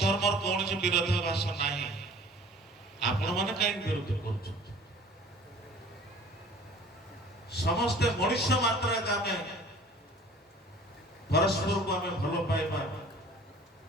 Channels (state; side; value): normal; both; correlation 0.48